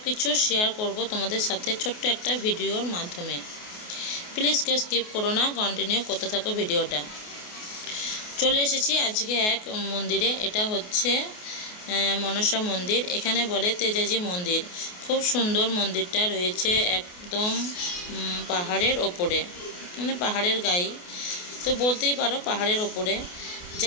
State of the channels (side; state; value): right; late; 28 ms